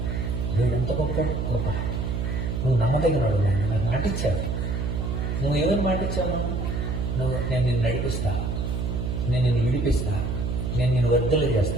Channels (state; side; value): noise; right; hum, 1 dB below the sound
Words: దేవుడు ఎంత గొప్ప గొప్ప. నువ్వు నమ్మదగినవాడు, నాకు మాటిచ్చావు. నువ్వు ఎవరు మాటిచ్చావు? నేను నిన్ను నడిపిస్తా, నేను నిన్ను విడిపిస్తా, నేను నిన్ను వర్ధలు